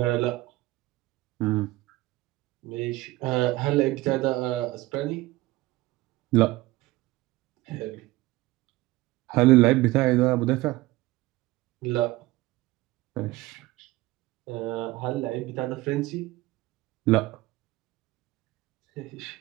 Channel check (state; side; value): quieter; left; 18.9 dB